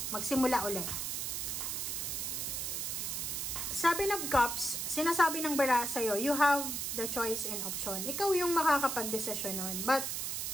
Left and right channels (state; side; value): noise; right; hiss, 2 dB below the sound